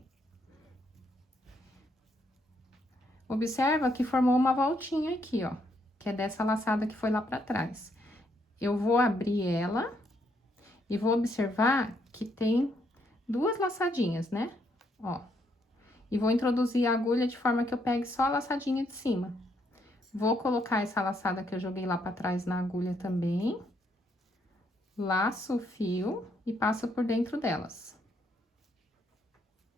Observa que formou uma voltinha aqui, ó, que é dessa laçada que foi lá pra trás. Eu vou abrir ela e vou observar que tem 2 laçadinhas, né? Ó. E vou introduzir a agulha de forma que eu pegue só a laçadinha de cima. Vou colocar essa laçada que eu joguei lá pra trás na agulha também. Laço o fio e passo por dentro delas.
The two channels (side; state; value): both; normal; correlation 0.74